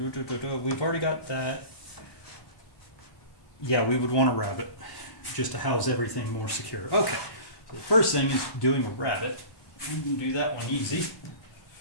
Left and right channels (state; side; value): late; right; 1.1 ms